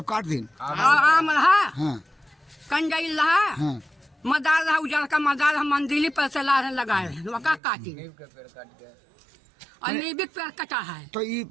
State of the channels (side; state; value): left; drops out; at 7.6 s